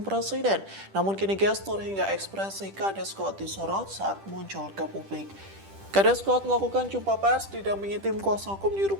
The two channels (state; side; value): late; left; 10 ms